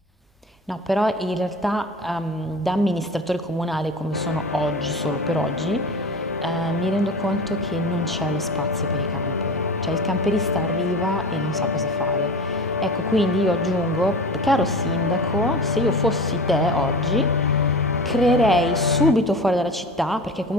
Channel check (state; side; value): normal; both; correlation 0.33